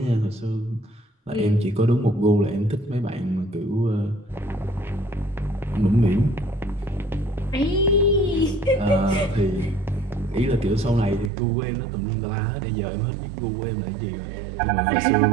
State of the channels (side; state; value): left; drops out; at 11.3 s